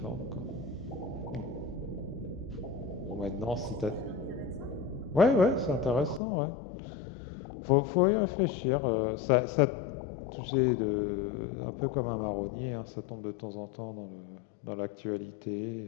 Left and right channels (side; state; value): right; drops out; at 6.2 s